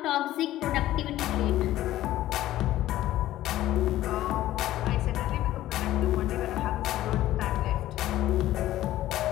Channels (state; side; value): quieter; right; 14.5 dB